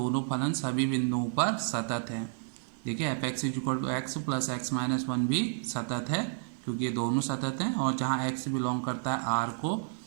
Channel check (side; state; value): left; silent; 57 dB below the other